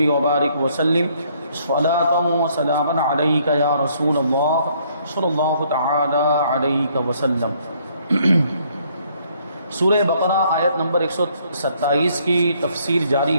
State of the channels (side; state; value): both; inverted; correlation -0.66